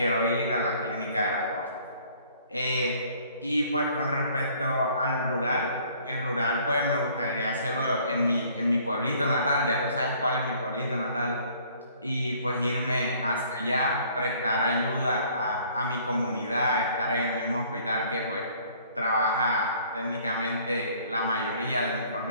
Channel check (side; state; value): both; inverted; correlation -0.58